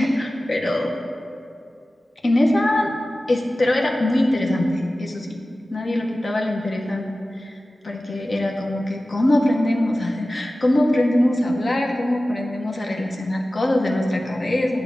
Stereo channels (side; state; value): both; normal; correlation 0.96